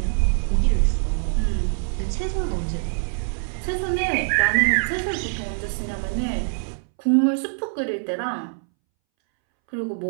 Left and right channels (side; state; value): left; silent; 63 dB below the other